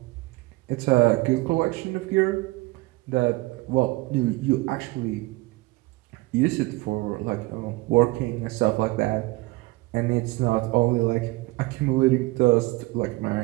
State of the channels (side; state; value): left; quieter; 22.2 dB